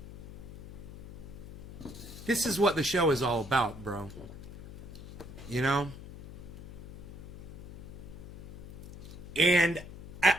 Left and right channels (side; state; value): left; noise; hum, 13 dB below the sound